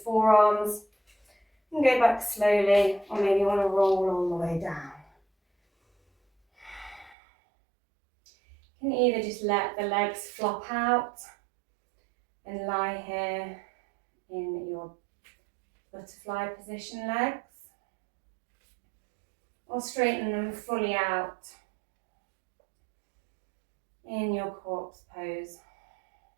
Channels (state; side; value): drops out; left; at 7.2 s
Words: forearms. And go back slowly, or maybe you want to roll all the way down. You can either just let the legs flop out and lie here in your butterfly position legs, or straighten them fully out in your corpse pose,